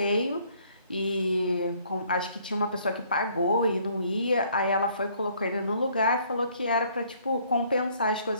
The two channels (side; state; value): both; inverted; correlation -0.62